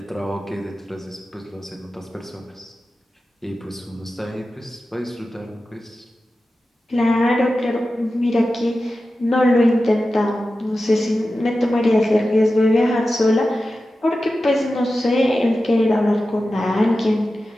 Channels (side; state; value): both; normal; correlation 0.93